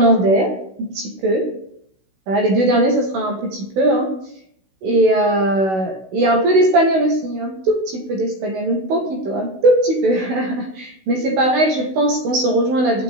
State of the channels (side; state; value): left; late; 16 ms